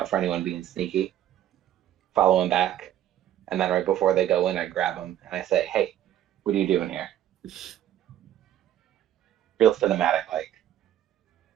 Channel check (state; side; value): quieter; left; 11.7 dB